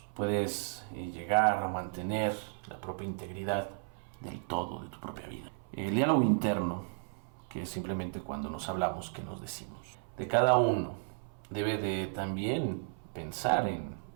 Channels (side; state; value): left; silent; 55 dB below the other